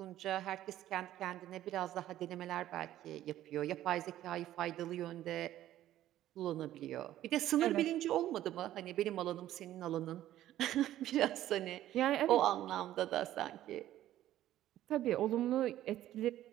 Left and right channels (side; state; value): left; quieter; 13.2 dB